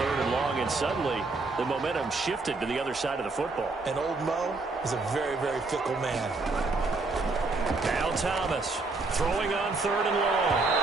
and long, and suddenly the momentum shifted to the other side of the football. And old Mo is a very, very fickle man. Now Thomas throwing on 3rd and long.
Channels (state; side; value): quieter; left; 3.6 dB